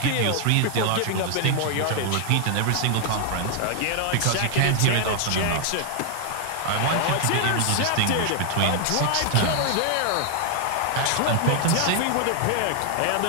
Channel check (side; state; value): both; different; correlation 0.00